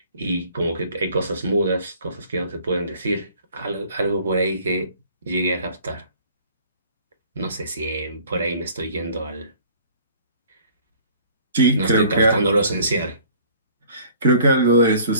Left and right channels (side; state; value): both; inverted; correlation -0.52